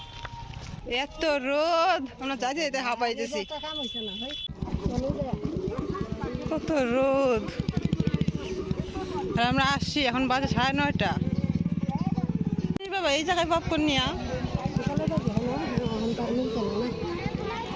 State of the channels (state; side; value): identical; both; correlation 1.00